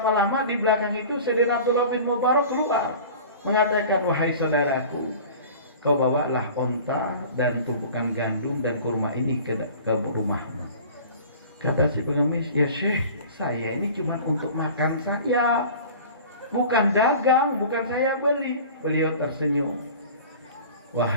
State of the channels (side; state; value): both; inverted; correlation -0.41